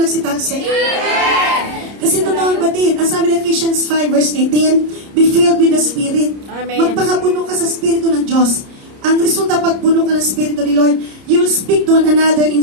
nagsitalsik? Kasi totoo ang batid. Ang sabi ng Ephesians 5 verse 18, be filled with the Spirit. Amen. Magpakapuno ka sa Espiritu ng Diyos. Ang resulta pag puno ka ng Espiritu ni Lord, you will speak to one another in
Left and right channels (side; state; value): left; late; 30 ms